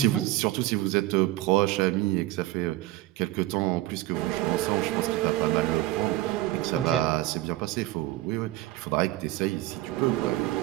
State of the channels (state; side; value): quieter; left; 16.6 dB